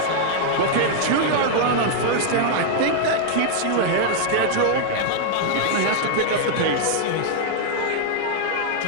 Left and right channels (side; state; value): both; different; correlation -0.01